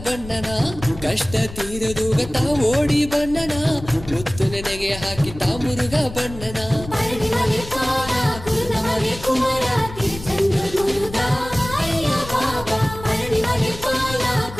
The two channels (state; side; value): noise; left; rumble, 13 dB below the sound